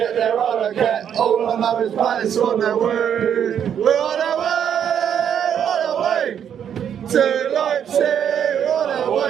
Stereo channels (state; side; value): quieter; left; 8.8 dB